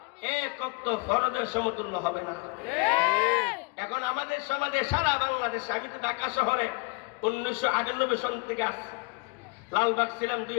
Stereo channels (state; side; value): quieter; right; 30.1 dB